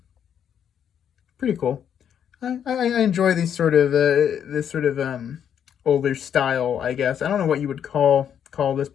Pretty cool. I enjoy these sort of this sort of older style, I guess. I don't know what you would call this,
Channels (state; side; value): quieter; right; 8.8 dB